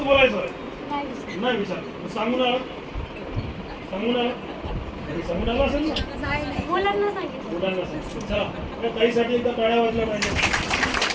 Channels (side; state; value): both; identical; correlation 1.00